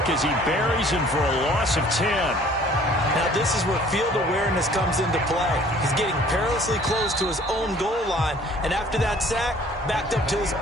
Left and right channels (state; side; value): normal; both; correlation 0.54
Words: as he buries him for a loss of 10. Now this is where field awareness comes into play. He's getting perilously close to his own goal line, and after that sack, backed up to his